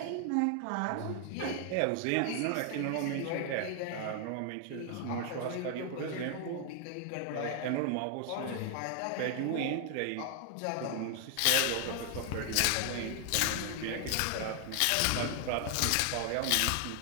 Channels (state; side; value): different; both; correlation 0.00